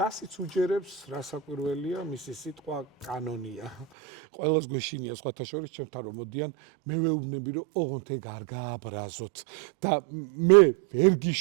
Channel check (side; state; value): left; drops out; at 3.9 s